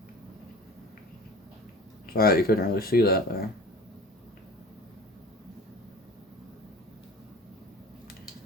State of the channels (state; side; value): normal; both; correlation 0.40